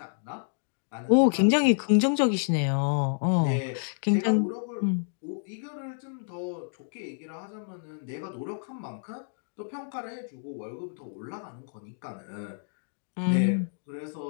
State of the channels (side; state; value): right; silent; digital silence